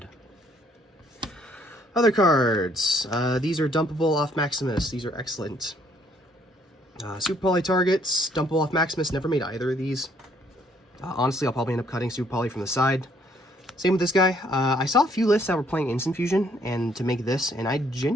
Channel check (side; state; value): both; normal; correlation 0.65